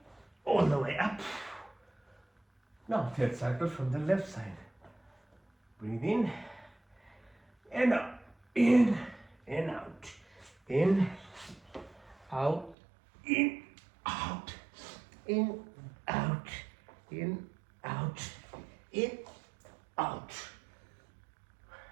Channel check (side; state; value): left; drops out; at 12.8 s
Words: all the way up. Now third cycle from the left side. Breathe in and out. In and out. In, out, in, out, in, out, in, out, in, out.